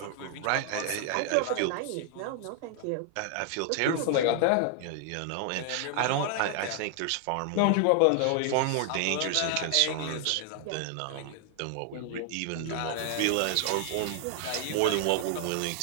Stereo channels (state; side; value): different; both; correlation 0.00